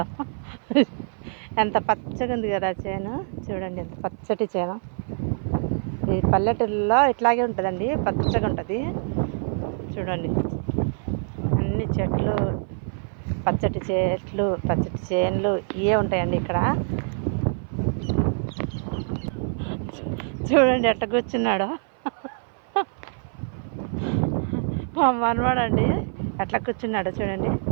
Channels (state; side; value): silent; left; 57 dB below the other